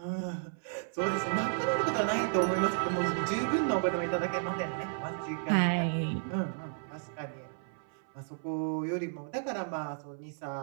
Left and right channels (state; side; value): silent; left; 56 dB below the other